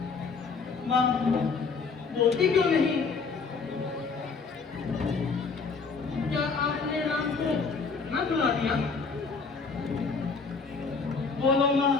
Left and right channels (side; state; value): right; quieter; 4.8 dB